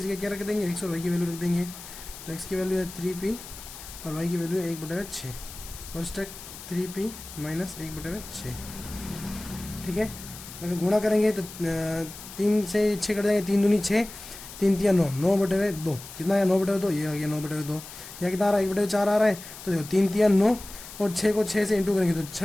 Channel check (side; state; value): left; noise; hiss, 14 dB below the sound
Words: क्या रख देंगे, x और y की वैल्यू रख देंगे। तो x की वैल्यू है 3p और y की वैल्यू है 1/6 कोष्टक 3p माइनस 1/6। ठीक है, अगर गुणा करेंगे तो 3 से 6 कट जाएंगे, 3 दूनी 6, 3 तिया 9, 9/2 कितना है 9/2, ये आ गया 9/2। या कितना आ रहा है 1/4 आ रहा है, तो देखो 3 तिया 9 और 6 को 6 से इंटू करेंगे तो 6